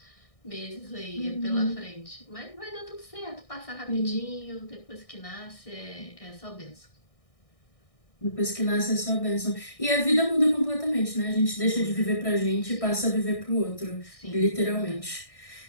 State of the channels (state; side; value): late; right; 1.6 ms